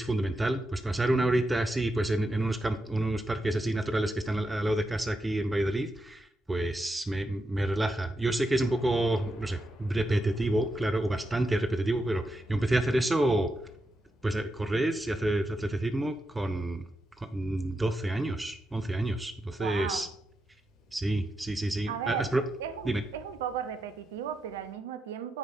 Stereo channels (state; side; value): normal; both; correlation 0.86